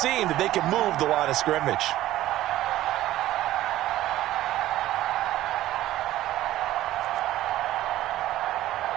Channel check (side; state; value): left; quieter; 14.6 dB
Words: that they can move the line of scrimmage.